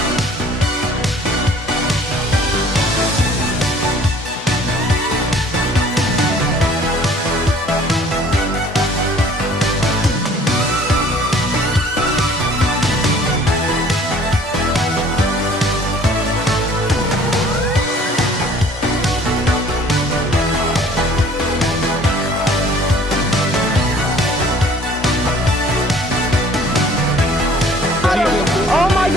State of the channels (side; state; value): both; normal; correlation 0.53